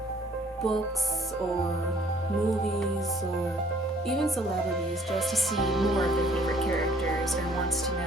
books or movies or even celebrities, just to see more of their favorite characters or wants to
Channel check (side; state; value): both; normal; correlation 0.59